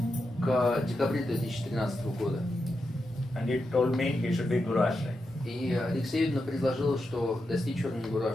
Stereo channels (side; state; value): both; normal; correlation 0.87